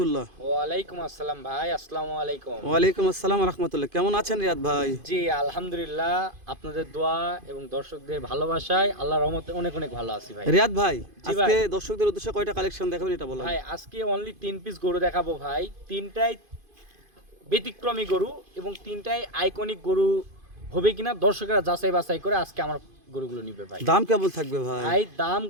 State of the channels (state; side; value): late; left; 2.5 ms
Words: ওয়ালাইকুম আসসালাম ভাই, আসসালামু আলাইকুম। ওয়ালাইকুম আসসালাম রহমতুল্লাহ। কেমন আছেন রিয়াদ ভাই? জি আলহামদুলিল্লাহ, আপনাদের দোয়া এবং দর্শকদের ভালোবাসায় আল্লাহর রহমতে অনেক অনেক ভালো আছি ভাই। রিয়াদ ভাই, জি আজকে ভাই। দর্শকদের উদ্দেশ্যে কয়টা কালেকশন দেখাবেন এটা বলেন। ভাই আজকে অনলি 3 পিস গরু দেখাবো ভাই, তিনটাই ব্যতিক্রমী গরু এবং তিনটাই আইকনিক গরু হবে কিনা দর্শকরা যাচাই বাছাই করে আজকে আমার গরুগুলো নিবে ভাই। দাম কেমন থাকবে ভাই? ভাই দাম